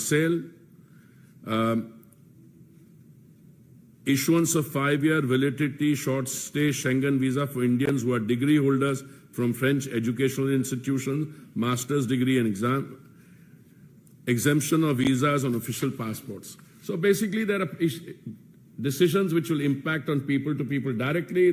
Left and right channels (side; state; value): both; identical; correlation 1.00